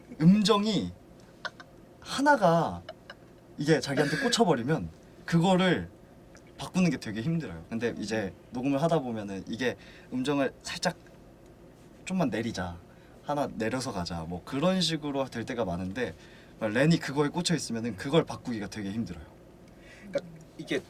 음정이 하나가 이게 자기한테 꽂혀버리면 그거를 바꾸는 게 되게 힘들어요. 근데 이제 녹음을 하다 보면은 이게 음정을 살짝 좀만 내리자, 하나 내려서 가자, 뭐 그런 식으로 될 때가 많은데 렌이 그거에 꽂혀 있으면은 그걸 바꾸기가 되게 힘들어요. 이게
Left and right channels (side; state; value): both; identical; correlation 1.00